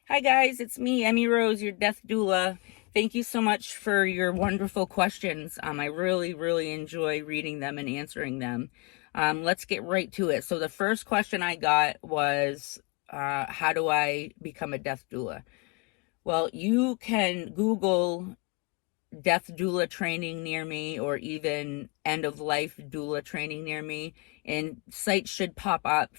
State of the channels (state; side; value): quieter; right; 31.0 dB